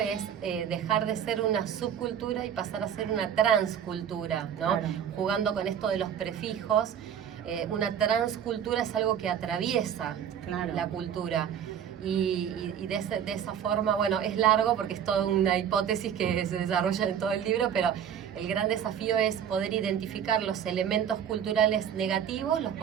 dejar de ser una subcultura y pasar a ser una transcultura, ¿no? Claro. Jugando con esto de los prefijos. Una transcultura es algo que atraviesa Claro. la cultura. Y de esa forma, bueno, es largo porque es toda una hipótesis que se desarrolla en todo el libro, pero el gran desafío es poder identificar los elementos culturales negativos, los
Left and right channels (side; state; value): left; quieter; 8.8 dB